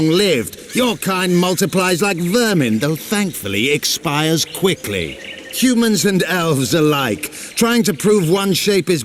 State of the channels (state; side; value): identical; both; correlation 1.00